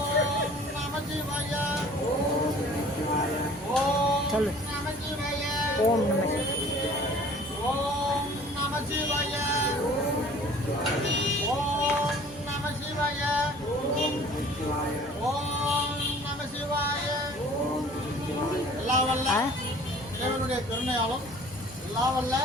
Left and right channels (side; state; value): both; normal; correlation 0.49